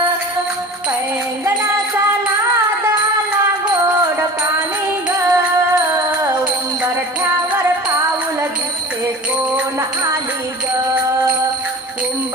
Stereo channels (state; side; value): normal; both; correlation 0.38